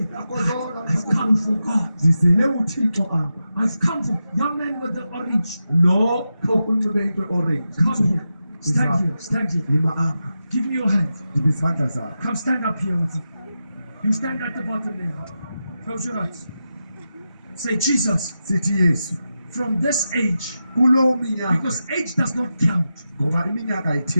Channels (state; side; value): inverted; both; correlation -0.90